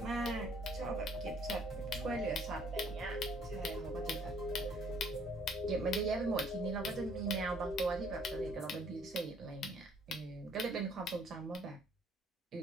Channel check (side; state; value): both; normal; correlation 0.62